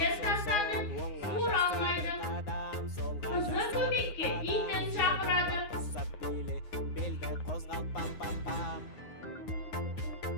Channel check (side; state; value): right; late; 9.6 ms